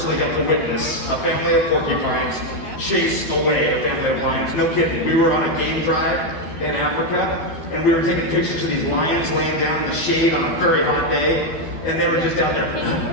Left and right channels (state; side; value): late; right; 12 ms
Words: got to witness a family of porcupines chase away a family of lions. No kidding. We were on a game drive in Africa, and we were taking pictures of these lions laying down in the shade on a very hot day. and they were just down